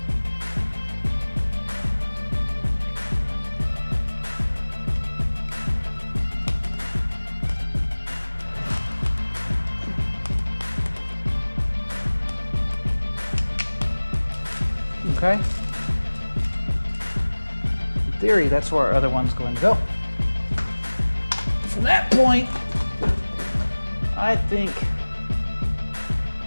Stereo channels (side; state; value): both; inverted; correlation -1.00